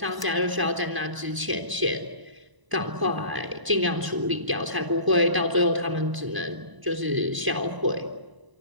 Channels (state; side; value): late; left; 1.0 ms